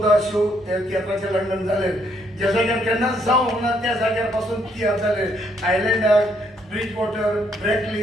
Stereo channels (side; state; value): both; normal; correlation 0.71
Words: शो त्या तियात्राचे लंडन जाले ज्या जाग्यार केन्नाच जावंक ना त्या जाग्यार पासून तियात्र जाले आयलँडार ब्रिज वॉटर ब्रॅकली